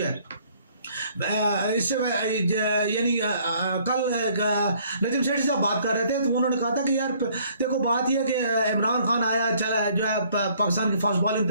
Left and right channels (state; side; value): inverted; both; correlation -0.61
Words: ہے اس سے یعنی کل نجم سیٹھی صاحب بات کر رہے تھے تو انہوں نے کہا تھا کہ یار دیکھو بات یہ کہ عمران خان آیا چلا جو ہے پاکستان کی فاسٹ بالنگ